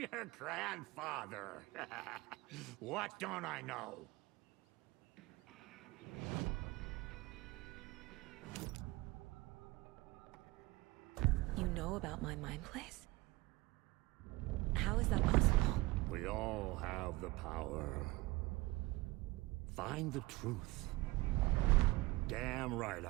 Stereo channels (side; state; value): left; quieter; 20.8 dB